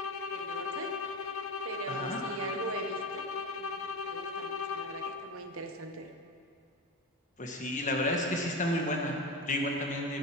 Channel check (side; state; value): both; normal; correlation 0.23